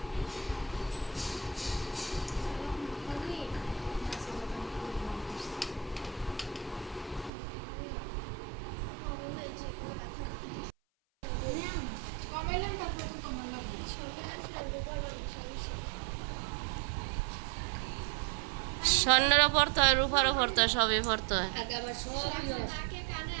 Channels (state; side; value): drops out; left; at 7.3 s